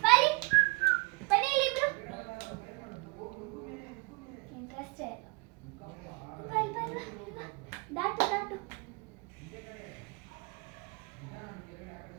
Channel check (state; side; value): quieter; left; 27.8 dB